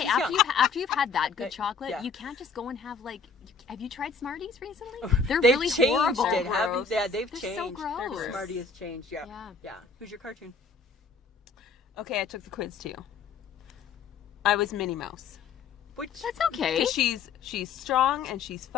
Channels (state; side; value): quieter; right; 5.0 dB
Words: She's after young. you've had that good chocolate, Yeah. you can't just go and have like. Have you tried Smarties recently? They're They've really changed horrible. it, haven't they? Yeah, they've They're changed. so gross. Smartie has changed, yeah. Yeah. Yeah. Who's your cartoon? Okay, I took the quiz too. I was Minnie Mouse. Which? That's okay. 'Cause she's strong and she's